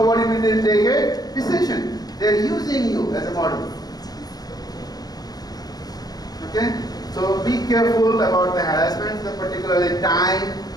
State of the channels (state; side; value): late; right; 0.19 ms